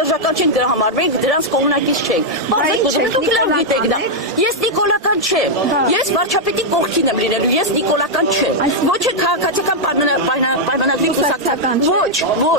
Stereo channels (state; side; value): normal; both; correlation -0.03